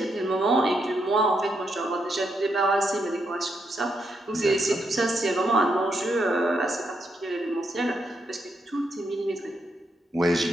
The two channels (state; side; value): normal; both; correlation 0.80